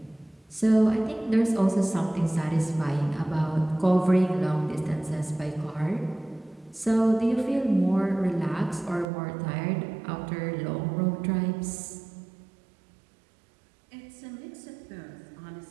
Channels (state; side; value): drops out; left; at 9.1 s